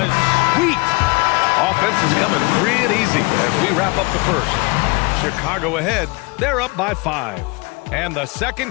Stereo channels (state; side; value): quieter; right; 26.8 dB